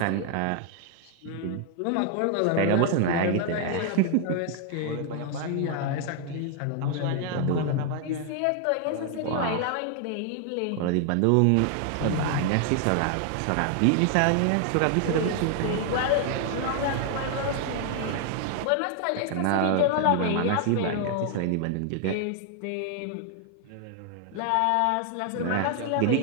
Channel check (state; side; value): different; both; correlation 0.00